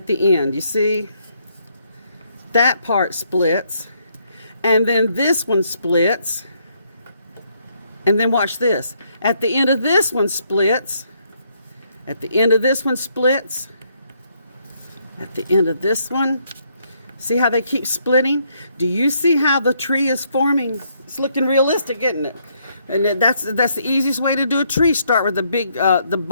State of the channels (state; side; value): inverted; both; correlation -0.72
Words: the end. You see? That part splits. And then this one splits. And then watch this. At the end of this one splits. At the end of this one splits. At the end of this one See how they keep splitting? Do you see how the tree is forming? It's looking realistic, isn't it? And that's the easiest way to do a tree. Start with the